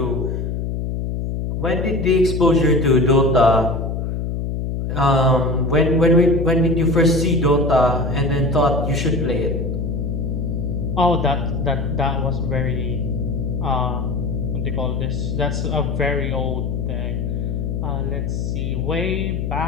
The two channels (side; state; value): left; noise; hum, 2 dB below the sound